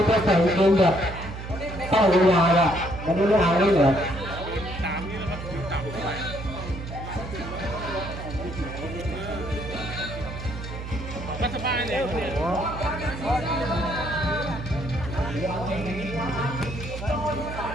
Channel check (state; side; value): noise; right; hum, 9 dB below the sound